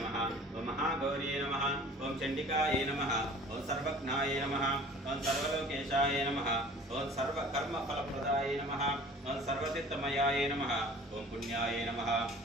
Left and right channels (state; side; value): normal; both; correlation 0.47